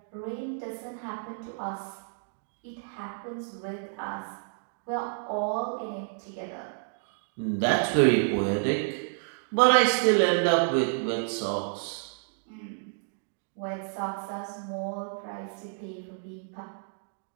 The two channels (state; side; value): silent; left; digital silence